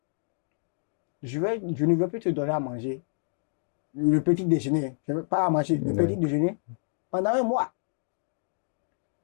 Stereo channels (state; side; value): silent; right; digital silence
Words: Je ne veux plus te donner à manger le petit déjeuner. Je ne veux pas à manger le petit déjeuner pendant 1 mois.